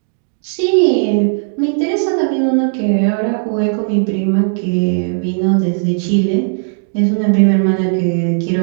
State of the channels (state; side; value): silent; left; 69 dB below the other